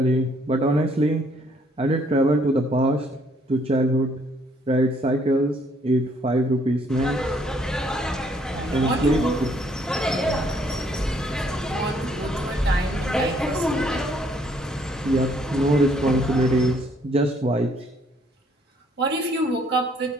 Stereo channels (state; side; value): normal; both; correlation 0.66